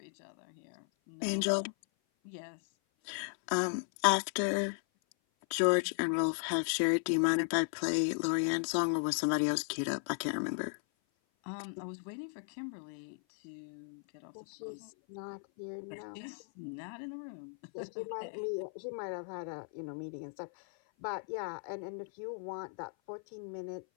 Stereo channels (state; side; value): silent; right; 54 dB below the other